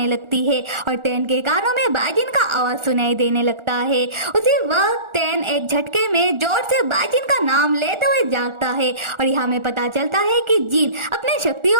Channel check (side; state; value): left; late; 1.4 ms